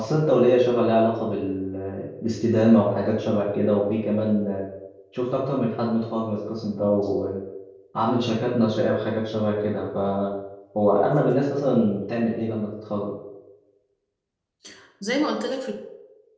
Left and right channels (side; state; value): both; identical; correlation 1.00